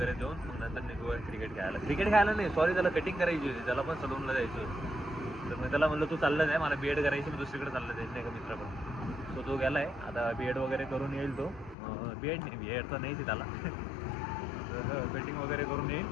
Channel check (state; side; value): drops out; right; at 11.8 s